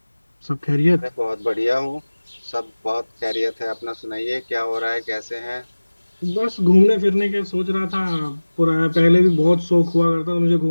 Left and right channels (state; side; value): inverted; both; correlation -1.00